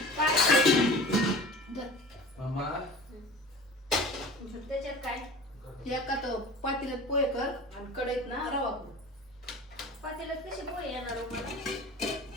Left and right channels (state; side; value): noise; right; rumble, 29 dB below the sound